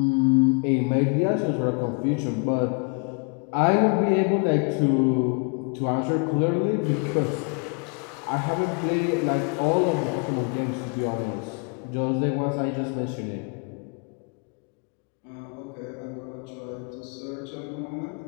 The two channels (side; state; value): right; quieter; 37.8 dB